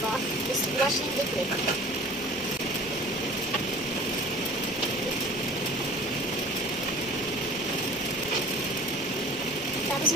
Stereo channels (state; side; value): normal; both; correlation 0.44